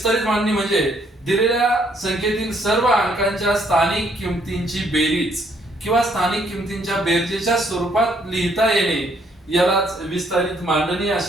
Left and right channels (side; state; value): both; normal; correlation 0.68